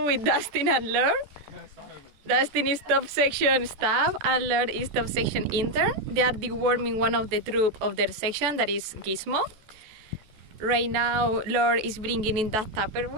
with Dustin and Lord. Dustin is top section staff and Lord is top section intern. They are deworming one of the troop of their section, that is Gizmo. Right now, Lord is bringing in that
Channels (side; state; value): left; late; 14 ms